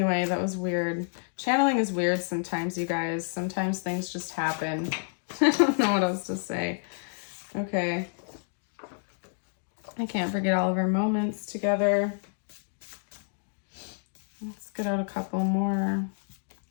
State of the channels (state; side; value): silent; right; 58 dB below the other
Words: that was weird. Channeling is weird sometimes, you guys. Sometimes things just happen. I don't know what else to say. Okay. I can't forget all of our moments together. Let's get out a couple more.